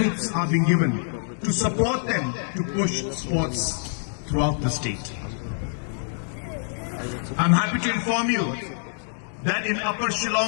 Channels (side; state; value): right; silent; digital silence